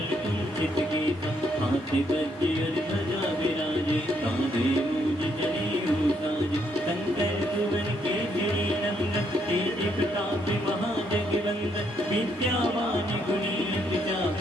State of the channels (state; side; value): normal; both; correlation 0.73